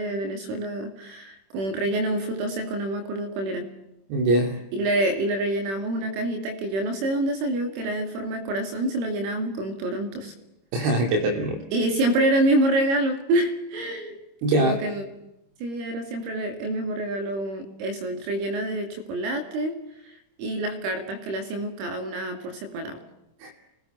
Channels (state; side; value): late; left; 26 ms